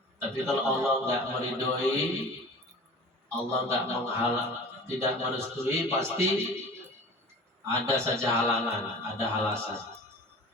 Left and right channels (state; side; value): normal; both; correlation 0.40